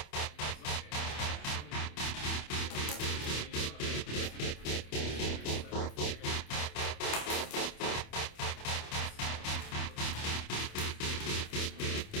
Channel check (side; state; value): right; late; 27 ms